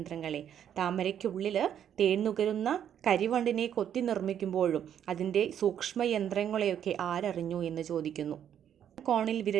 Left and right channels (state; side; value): quieter; left; 9.5 dB